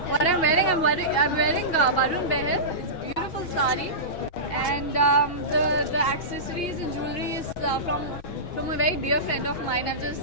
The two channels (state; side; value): late; right; 6.2 ms